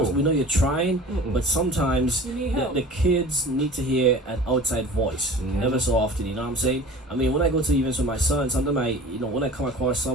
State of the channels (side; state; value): both; normal; correlation 0.41